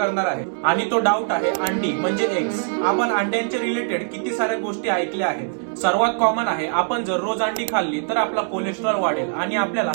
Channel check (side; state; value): left; silent; digital silence